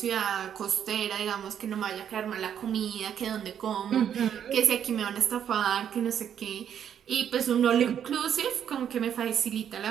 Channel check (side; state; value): left; quieter; 9.0 dB